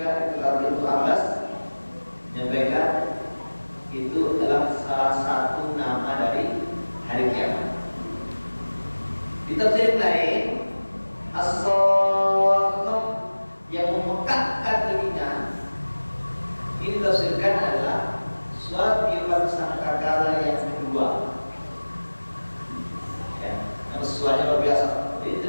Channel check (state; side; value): inverted; both; correlation -1.00